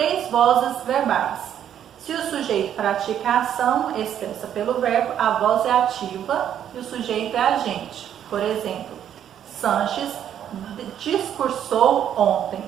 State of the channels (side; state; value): left; quieter; 9.9 dB